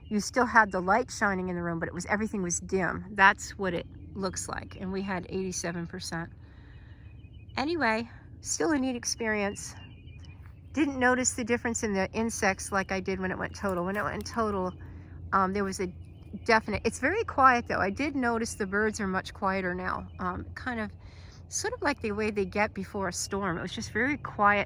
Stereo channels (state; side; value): identical; both; correlation 1.00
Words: You still had the light shining in the room, but everything was dim. That's what it looks like, and we had 87%. Anyway, still a neat experience. Didn't notice the difference in the insects like I did when it went total. When it went total, there was a definite, it's very quiet though. I did notice the birds are much quieter now. Kind of, sort of like the way they get before a storm. It was just very